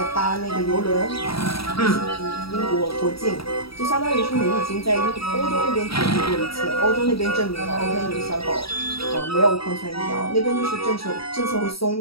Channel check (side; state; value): right; late; 0.76 ms